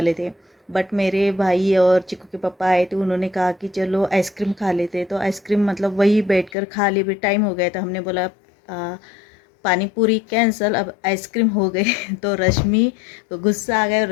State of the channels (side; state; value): right; drops out; at 6.5 s